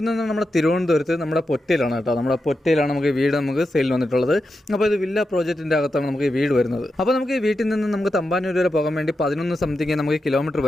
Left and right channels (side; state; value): both; normal; correlation 0.88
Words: നമ്മുടെ തിരുവനന്തപുരത്ത് നമ്മുടെ പൊറ്റയിലാണ് കേട്ടോ. നമ്മുടെ പൊറ്റയിലാണ് നമുക്ക് വീട് നമുക്ക് സെയിലിന് വന്നിട്ടുള്ളത്. അപ്പോൾ ഇത് വില്ല പ്രോജക്റ്റിൻ്റെ അകത്താണ് നമുക്ക് ഈ വീട് വരുന്നത്. അപ്പോൾ നമുക്ക് ഈ വീട്ടിൽ നിന്ന് നമുക്ക് തമ്പാനൂർ വരെ പോകാൻ വേണ്ടി 11 സംതിങ് നമുക്ക് കിലോമീറ്റർ